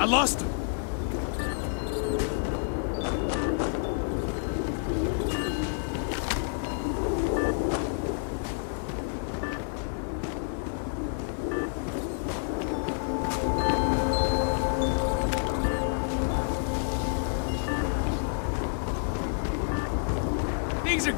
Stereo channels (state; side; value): silent; right; digital silence